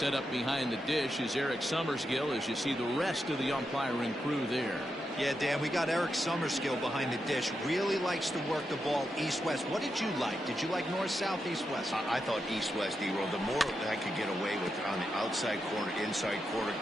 up behind the dish is Eric Summerskill as you see the rest of the umpiring crew there. Yeah, Dan, we got Eric Summerskill behind the dish. Really likes to work the ball east-west. What did you like? Did you like north-south, east-west? I thought east-west, D-roll. The more that I could get away with on the outside corner, inside corner,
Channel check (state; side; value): normal; both; correlation 0.86